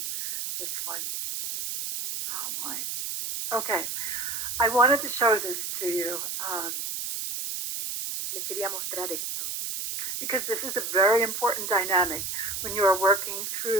Oh, my. Okay. I wanted to show this to you. Les quería mostrar esto. Because this is a very important dynamic when you are working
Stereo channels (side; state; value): right; noise; hiss, 4 dB below the sound